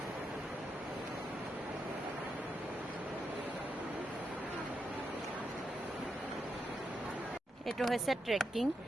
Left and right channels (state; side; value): normal; both; correlation 0.84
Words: এইটো হৈছে ট্ৰেকিং